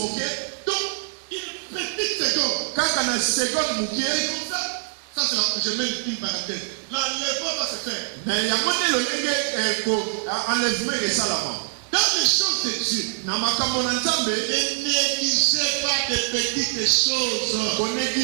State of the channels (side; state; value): left; silent; digital silence